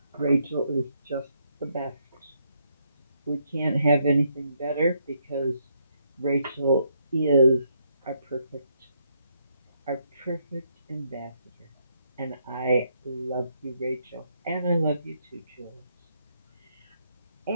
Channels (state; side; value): inverted; both; correlation -0.75